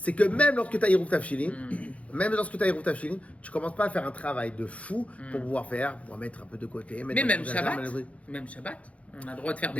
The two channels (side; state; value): right; late; 0.065 ms